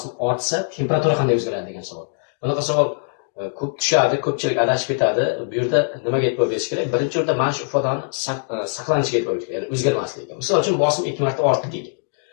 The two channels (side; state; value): right; silent; digital silence